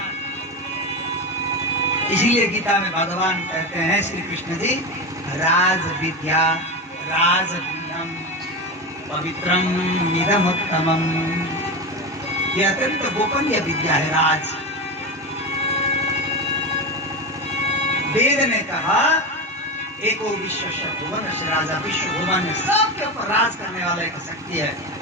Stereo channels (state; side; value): normal; both; correlation 0.20